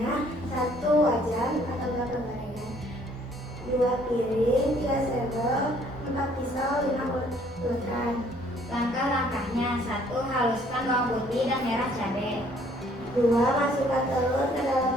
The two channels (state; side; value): normal; both; correlation 0.61